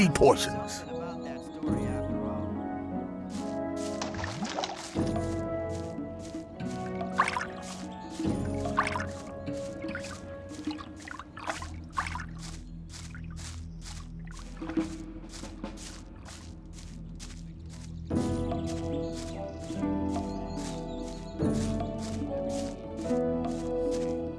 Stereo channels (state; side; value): identical; both; correlation 1.00